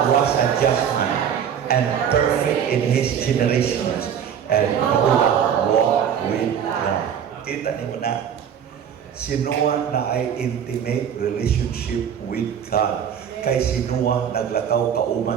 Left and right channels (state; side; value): quieter; left; 8.4 dB